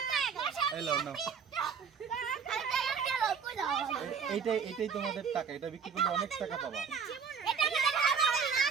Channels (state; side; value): quieter; left; 6.4 dB